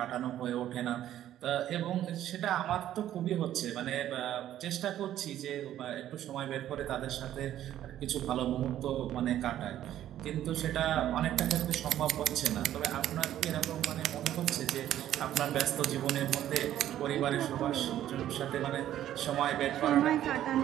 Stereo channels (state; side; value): quieter; left; 12.0 dB